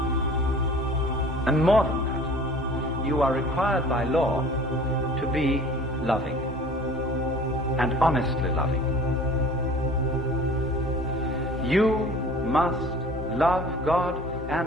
And more than that, you are required by law to be loving and honestly loving. You must love God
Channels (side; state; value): both; normal; correlation 0.45